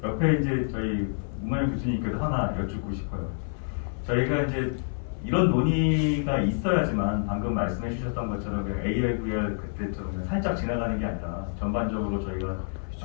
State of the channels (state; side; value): silent; right; 56 dB below the other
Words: 옆에 이제 저희 문만영 교수님께도 하나 여쭙고 싶어요. 저희가 이제 이런 논의가 있어야지만 방금 말씀해 주셨던 것처럼 그냥 AR, VR 그때처럼 그냥 살짝 지나가는 게 아니라 전반적으로 저희가